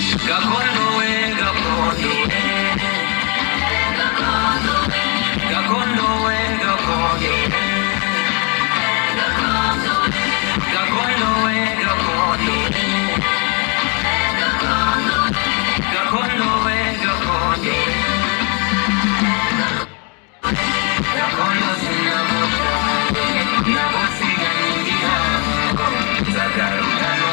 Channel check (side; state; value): right; quieter; 34.4 dB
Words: gakondo we gakondo gakondo we gakondo gakondo we gakondo gakondo we gakondo gakondo sinamushake nagusiganye igihango nzagaruka